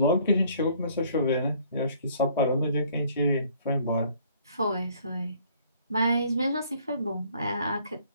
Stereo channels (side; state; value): both; inverted; correlation -0.60